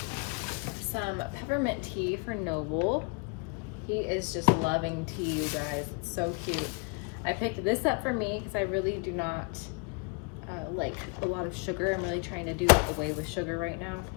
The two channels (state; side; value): quieter; right; 31.8 dB